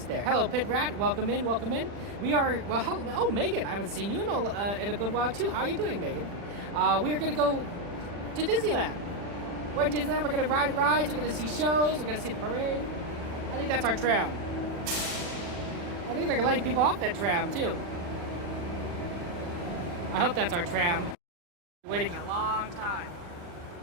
there. Hello, Pit Rat. Welcome in. We are, oh, Megan, I haven't seen you in a good while, too. How are you doing, Megan? We are going to go to Disneyland. We're at Disneyland. We're going to ride rides. We're going to see shows. We're going to see the parade. I think that's our tram. I think they're letting people off that tram, too. I hope that's our tram. Waiting a long time.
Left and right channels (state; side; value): late; left; 40 ms